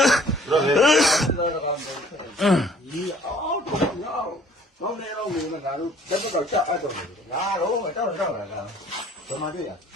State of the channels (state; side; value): normal; both; correlation 0.56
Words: ဒီအော်တော့ငါတော့နေတော့နေငါတို့တက်တော့ချက်အဲ့တော့ငါတော့တော့လာဘယ်မှာတွေ့ရ